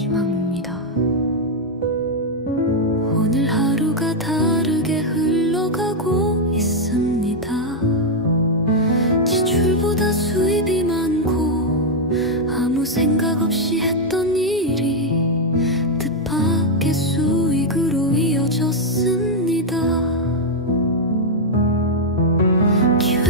오늘 하루가 다르게 흘러가고 있습니다. 지출보다 수입이 많고 아무 생각 없이 했던 일이 뜻밖의 수익으로 이어졌습니다.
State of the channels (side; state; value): both; normal; correlation -0.01